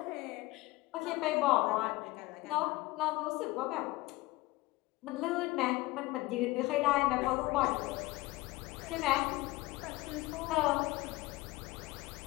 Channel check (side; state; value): right; quieter; 20.2 dB